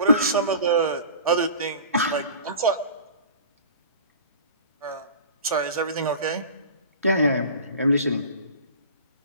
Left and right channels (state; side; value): inverted; both; correlation -0.40